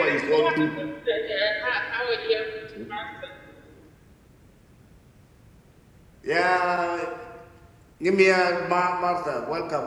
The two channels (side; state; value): both; identical; correlation 1.00